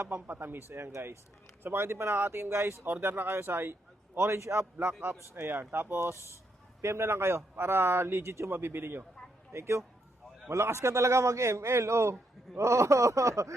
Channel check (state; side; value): normal; both; correlation 0.78